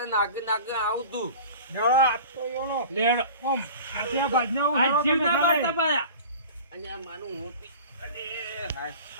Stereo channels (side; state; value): both; inverted; correlation -0.39